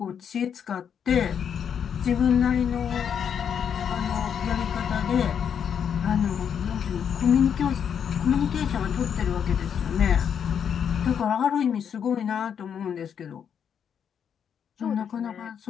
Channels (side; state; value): right; quieter; 7.9 dB